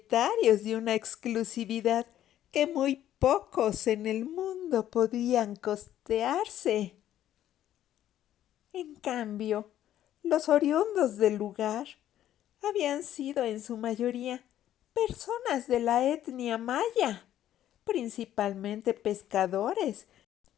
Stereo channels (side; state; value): right; quieter; 11.9 dB